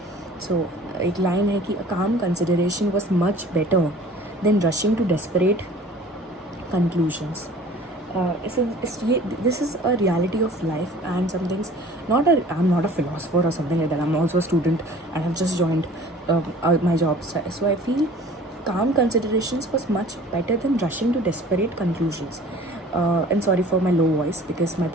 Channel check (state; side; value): normal; both; correlation 0.47